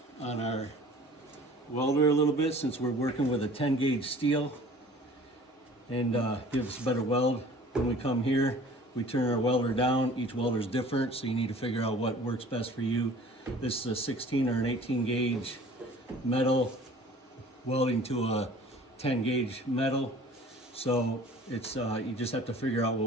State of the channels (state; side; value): normal; both; correlation 0.48